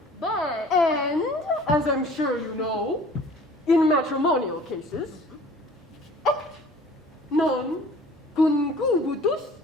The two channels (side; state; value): both; normal; correlation 0.49